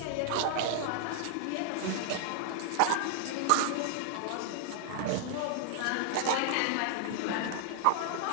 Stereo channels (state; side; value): different; both; correlation 0.00